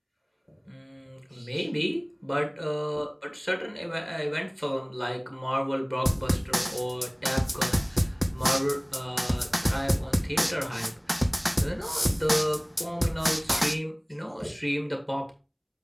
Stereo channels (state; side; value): identical; both; correlation 1.00